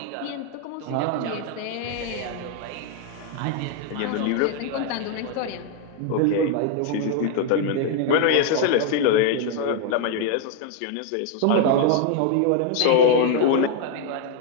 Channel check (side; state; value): both; different; correlation 0.00